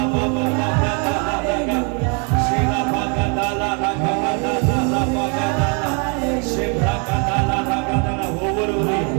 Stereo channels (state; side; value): quieter; left; 35.8 dB